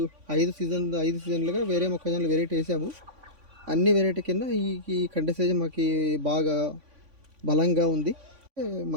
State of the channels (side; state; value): left; late; 3.5 ms